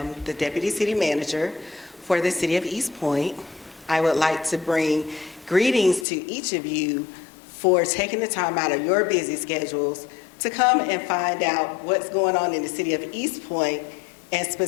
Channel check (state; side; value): drops out; right; at 6.1 s